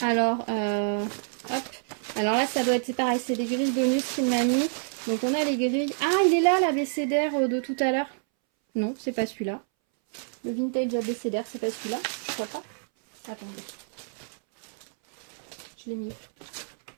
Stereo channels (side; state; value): left; silent; 60 dB below the other